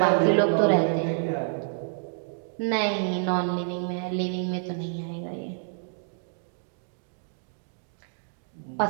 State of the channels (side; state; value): left; silent; digital silence